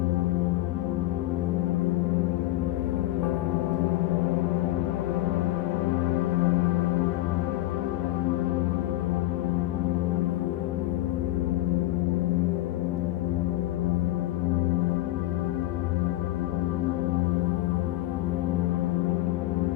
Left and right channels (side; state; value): right; quieter; 15.9 dB